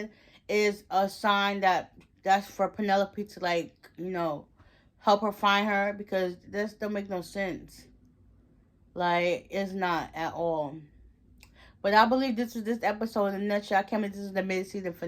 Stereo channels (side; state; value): both; identical; correlation 1.00